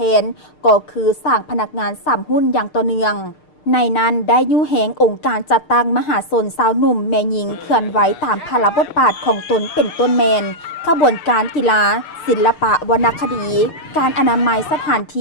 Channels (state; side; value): late; right; 6.6 ms